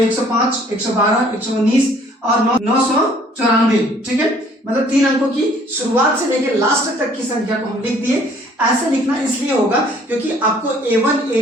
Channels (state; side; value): normal; both; correlation 0.58